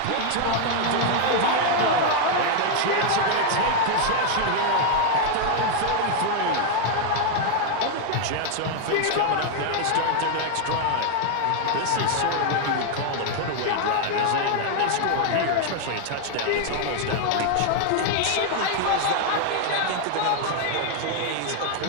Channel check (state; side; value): different; both; correlation 0.00